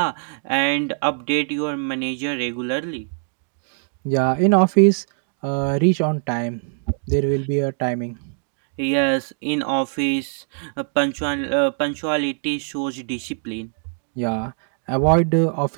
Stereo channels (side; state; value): left; silent; digital silence